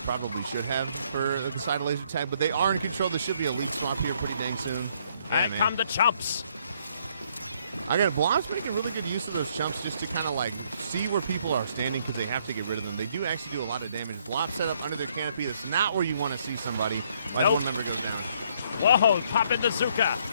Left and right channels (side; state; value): both; inverted; correlation -0.67